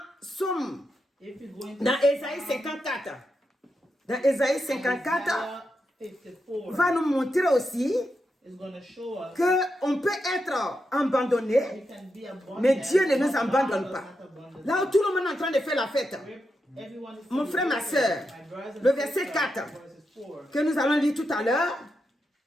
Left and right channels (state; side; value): normal; both; correlation 0.86